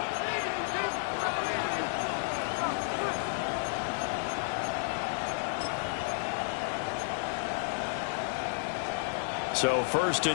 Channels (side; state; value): right; silent; 57 dB below the other